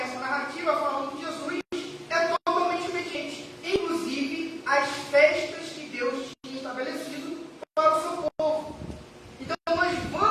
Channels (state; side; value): identical; both; correlation 1.00